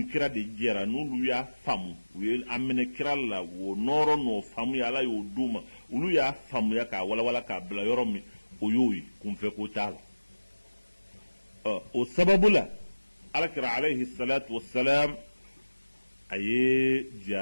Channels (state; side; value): inverted; both; correlation -1.00